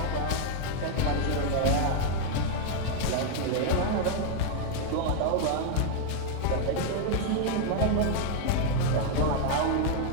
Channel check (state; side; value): different; both; correlation 0.00